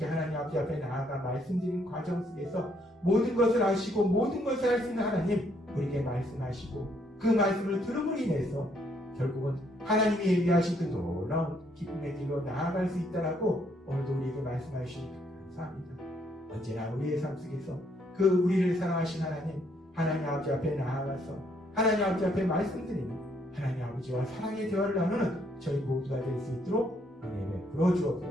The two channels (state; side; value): normal; both; correlation 0.70